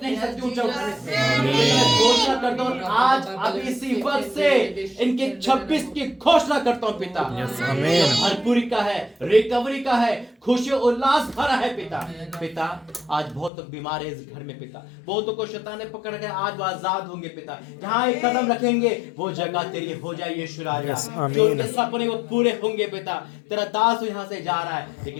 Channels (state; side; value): drops out; right; at 13.5 s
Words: नहीं सकती ऊंचा उठने से। मैं घोषणा करता हूँ आज अभी इसी वक्त से इनके 26 की घोषणा करता हूँ पिता। भरपूरी का है, रिकवरी का है, खुशी उल्लास भरा है पिता। पिता आज बहुत लोग बीमार है इस घर में पिता, बहुतों को शैतान ने पकड़ के, आज वो आजाद होंगे पिता। जहाँ एक कदम रखेंगे वो जगह तेरी हो जाए यीशु राजा। जो उनके सपने वो पूरे होंगे पिता। तेरा दास यहाँ से जा रहा है,